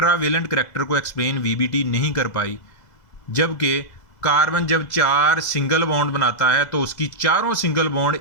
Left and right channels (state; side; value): late; right; 2.0 ms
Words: करैक्टर को एक्सप्लेन वीबीटी नहीं कर पाई। जबकि कार्बन जब 4 सिंगल बॉन्ड बनाता है तो उसकी चारों सिंगल